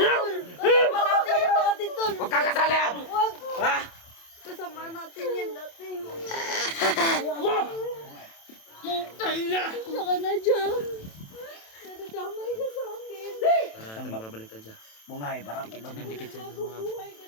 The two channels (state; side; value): late; right; 27 ms